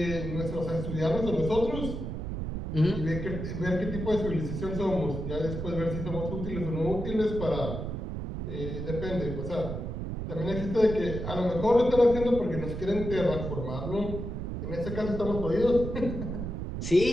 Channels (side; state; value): right; noise; rumble, 5 dB below the sound